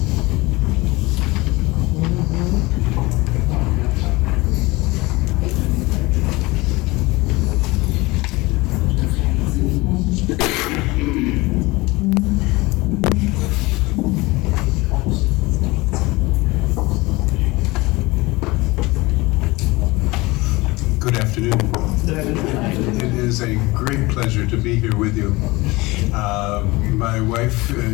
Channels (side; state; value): right; quieter; 22.2 dB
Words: Good afternoon. It is a great pleasure to be here with you. My wife,